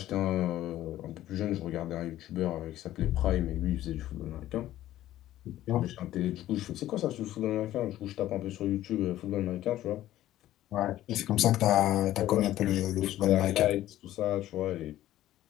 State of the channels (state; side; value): quieter; right; 13.9 dB